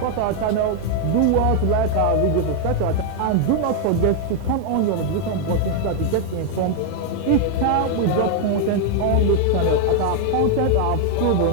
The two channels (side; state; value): both; different; correlation 0.00